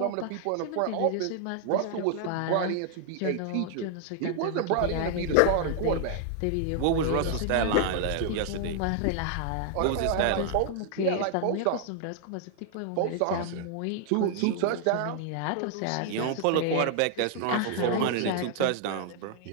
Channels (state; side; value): different; both; correlation 0.00